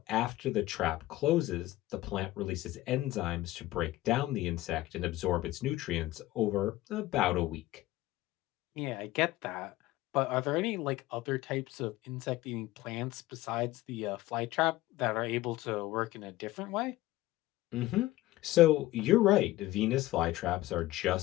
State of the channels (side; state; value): right; quieter; 16.9 dB